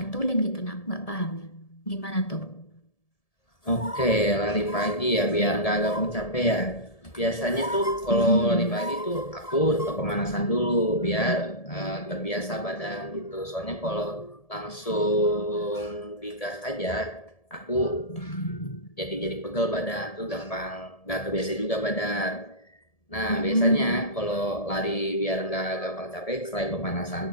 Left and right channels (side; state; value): right; late; 1.7 ms